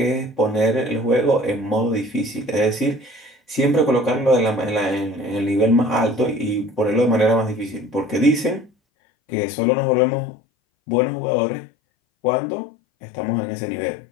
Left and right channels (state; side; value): drops out; right; at 8.7 s